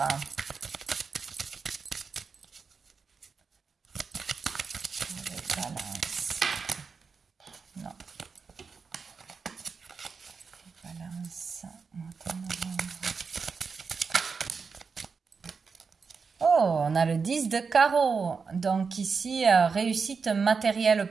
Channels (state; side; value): quieter; left; 5.2 dB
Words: Balance. Non. Balance. Oh, on a le 10 de carreau. Donc ici, réussite matérielle